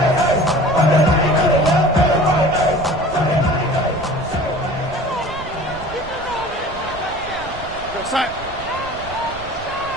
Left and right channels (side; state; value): right; noise; rumble, 15 dB below the sound